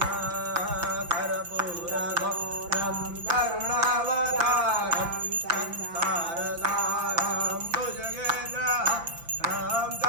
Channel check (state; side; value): late; left; 5.9 ms